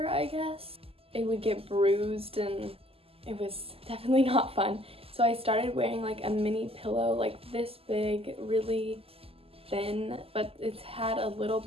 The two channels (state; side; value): late; left; 0.28 ms